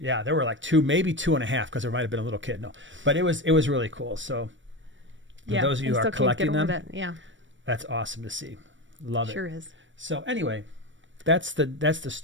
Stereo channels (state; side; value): late; left; 0.55 ms